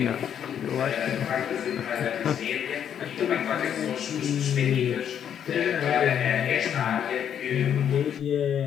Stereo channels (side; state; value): right; quieter; 9.0 dB